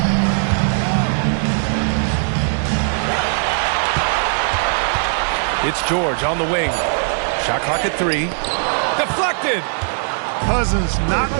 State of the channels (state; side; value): silent; left; digital silence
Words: It's George on the wing. Shot clock at 3. Deflected. Cousins not